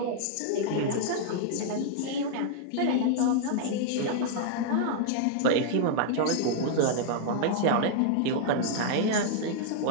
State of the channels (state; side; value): different; both; correlation -0.01